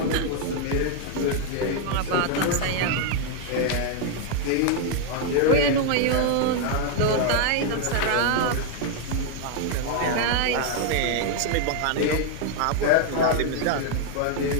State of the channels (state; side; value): different; both; correlation 0.00